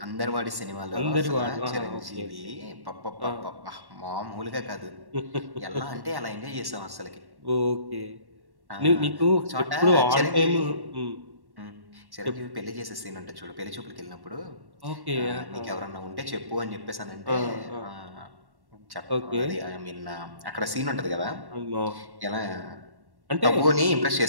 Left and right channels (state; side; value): late; left; 1.1 ms